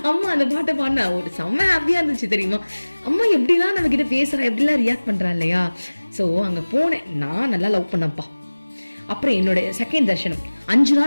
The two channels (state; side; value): inverted; both; correlation -1.00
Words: அம்மா அந்த பாட்டை பாடினா ஒரு செம்ம ஹாப்பியா இருந்துச்சு தெரியுமா. அம்மா எப்படிலாம் நம்ம கிட்ட பேசுறா, எப்படிலாம் ரியாக்ட் பண்றா இல்லையா. சோ அங்க போனேன், நான் நல்லா லவ் பண்ணப்பா. அப்புறம் என்னோட செகண்ட் தர்ஷனம் 5